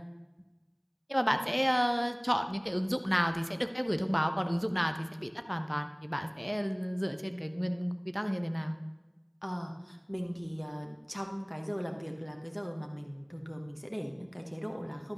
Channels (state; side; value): identical; both; correlation 1.00